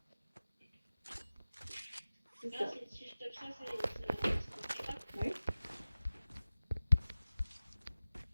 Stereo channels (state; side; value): inverted; both; correlation -0.95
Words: C'est Ah, ça. si je tape ça, c'est ça. Oui.